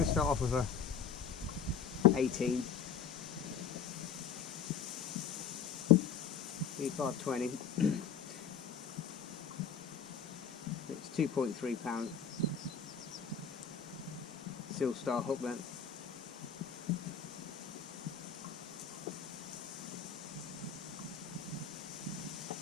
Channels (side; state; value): right; quieter; 6.9 dB